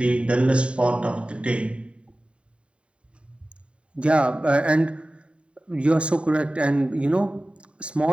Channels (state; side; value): late; left; 0.057 ms